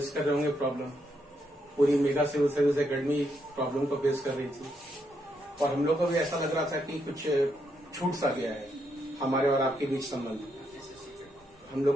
कर रहे होंगे प्रॉब्लम। पूरी mega civil service academy problem को फेस कर रही थी और हम लोग को भी ऐसा लग रहा था कि कुछ छूट सा गया है हमारे और आपके बीच संबंध। हम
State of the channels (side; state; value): both; normal; correlation 0.78